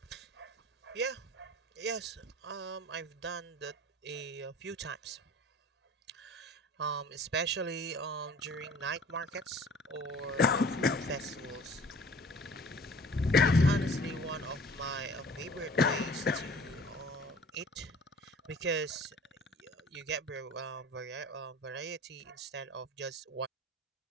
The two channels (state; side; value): normal; both; correlation 0.46